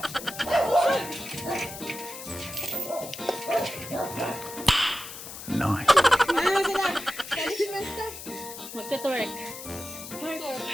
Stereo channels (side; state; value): left; noise; hiss, 11 dB below the sound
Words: Ano na sila? Magka-twerk.